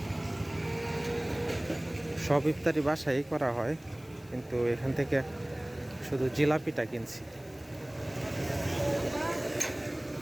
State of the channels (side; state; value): left; noise; hiss, 26 dB below the sound